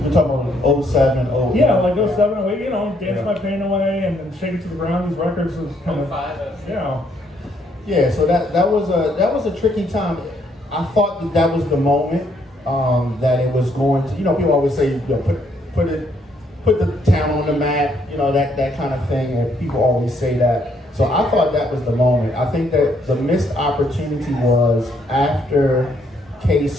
talking about 07, 08. Yeah, 07, 08, Dance My Pain Away and then Shake It to the Ground. These records was kind of, Yeah, so that was a tricky time. I thought that was the moment that it was going to, people always say, put the town on the map, that kind of thing, and people always say that. So I thought that was the moment. I think that the missed opportunity was after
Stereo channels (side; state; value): both; normal; correlation 0.71